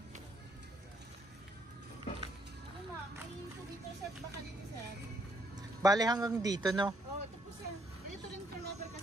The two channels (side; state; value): both; normal; correlation 0.70